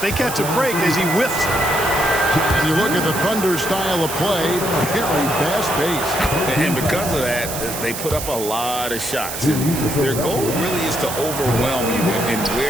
they catch a break as he whiffs. And you look at the Thunder style of play, very fast-paced. And because of that, they put up a lot of shots. And their goal really is to overwhelm you and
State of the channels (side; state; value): right; noise; hiss, 7 dB below the sound